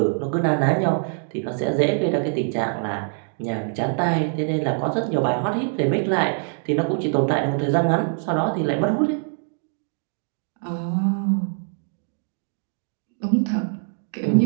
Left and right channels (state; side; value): silent; left; 62 dB below the other